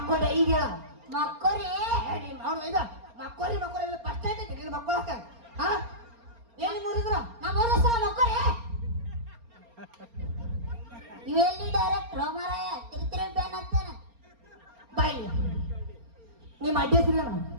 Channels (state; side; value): late; left; 4.3 ms